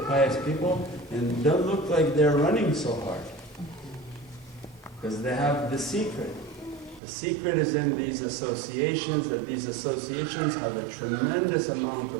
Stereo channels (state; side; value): drops out; left; at 7.0 s